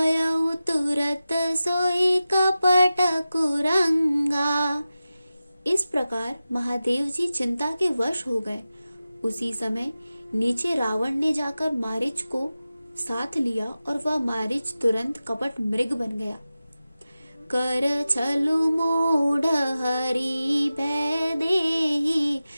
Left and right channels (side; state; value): both; inverted; correlation -0.94